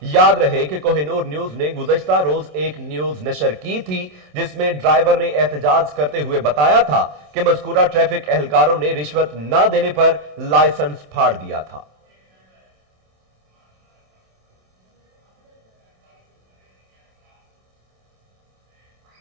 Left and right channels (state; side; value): late; left; 27 ms